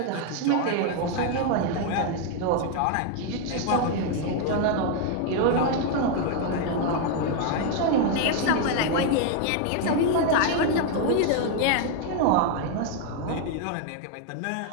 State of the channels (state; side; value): different; both; correlation 0.01